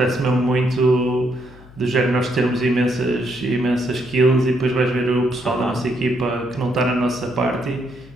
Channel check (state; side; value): noise; left; hum, 22 dB below the sound